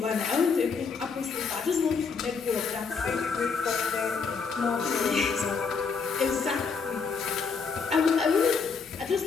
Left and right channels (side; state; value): right; quieter; 5.3 dB